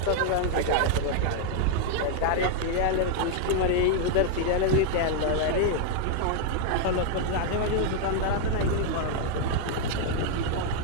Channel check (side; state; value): both; different; correlation 0.00